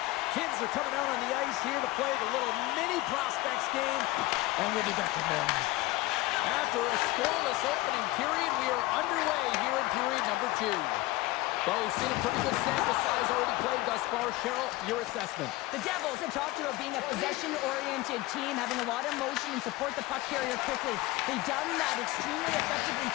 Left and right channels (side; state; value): right; quieter; 19.1 dB